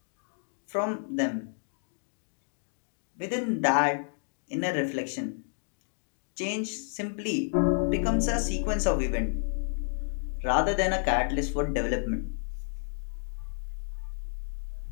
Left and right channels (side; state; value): right; silent; 57 dB below the other